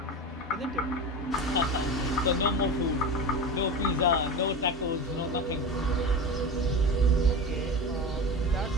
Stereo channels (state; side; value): normal; both; correlation 0.26